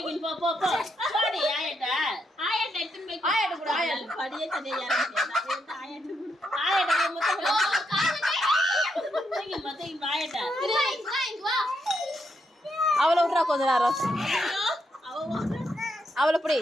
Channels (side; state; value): both; normal; correlation 0.80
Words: போ போ போ கோழி ஆயட்ட எடுத்துன்னு போய் ஆயட்ட கூட ஆயட்ட படியே தனியா யாரங்க ஆயட்ட ஆயட்ட மொத்தம் தூக்கி மொத்தம் ஆயட்ட வா அவளை விட்றா கொஞ்ச நேரம். அவளை பிடி.